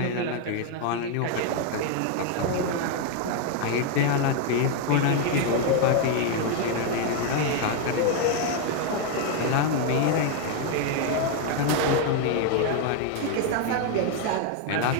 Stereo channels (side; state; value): both; different; correlation 0.00